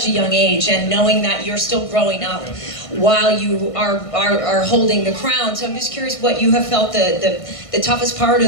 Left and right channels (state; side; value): late; right; 1.5 ms